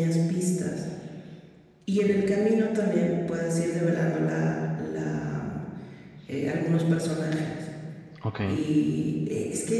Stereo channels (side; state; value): both; identical; correlation 1.00